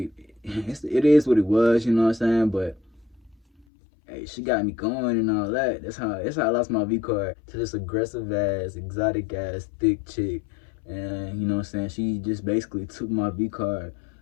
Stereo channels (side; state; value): right; drops out; at 3.7 s